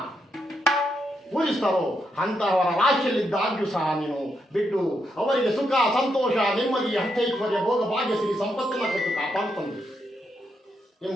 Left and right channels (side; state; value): both; normal; correlation 0.81